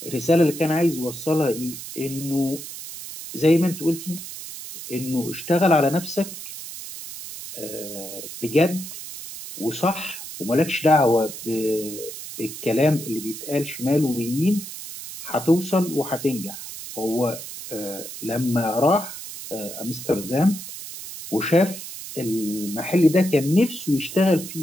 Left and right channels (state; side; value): noise; right; hiss, 11 dB below the sound